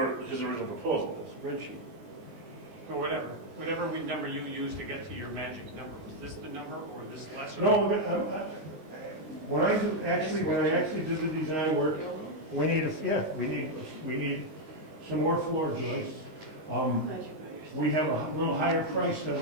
his original proposal? The spreadsheet. Or whatever number you used to get to your magic number. Was this the number or this lesser? No, when I actually did the design work, we need some more floor joists. We have a little higher price than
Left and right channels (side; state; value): left; late; 19 ms